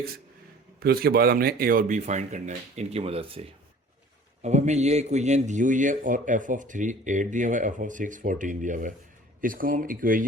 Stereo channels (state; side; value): normal; both; correlation 0.48